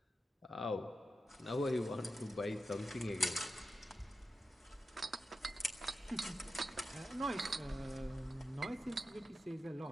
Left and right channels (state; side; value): normal; both; correlation 0.91